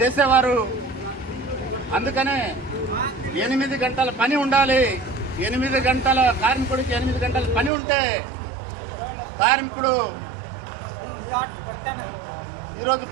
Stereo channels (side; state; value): left; drops out; at 7.7 s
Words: అందుకనే 8 గంటల పని ఉండాలి. 8 గంటల కార్మికుడికి 8 గంటల పని ఉంటే కార్మికుడు ఈరోజు